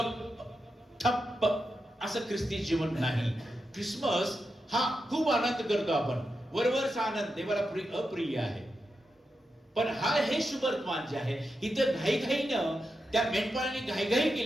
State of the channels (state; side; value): normal; both; correlation 0.88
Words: ठप्प असं ख्रिस्ती जीवन नाही. क्रिसमस हा खूप आनंद करतो आपण, वरवरचा आनंद देवाला अप्रिय आहे. पण हे शुभवर्तमान जे आहे, इथं घाईघाईनं त्या मेंढपाळांनी घाईघाई